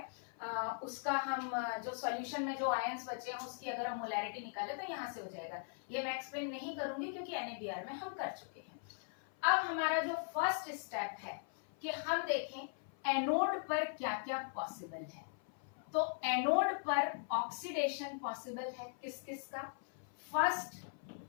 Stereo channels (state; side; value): silent; right; 51 dB below the other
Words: उसका हम जो सॉल्यूशन में जो आयंस बचे हैं उसकी अगर हम मोलैरिटी निकाले तो यहाँ से हो जाएगा। ये मैं एक्सप्लेन नहीं करूंगी क्योंकि NaBr में हम कर चुके हैं। अब हमारा जो फर्स्ट स्टेप है कि हम देखें एनोड पर क्या क्या पॉसिबल है। तो एनोड पर ऑक्सीडेशन पॉसिबल है किस किस का, फर्स्ट